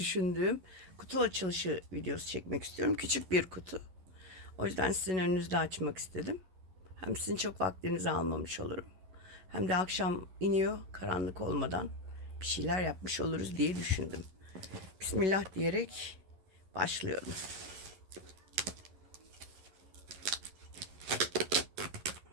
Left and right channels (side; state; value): left; late; 11 ms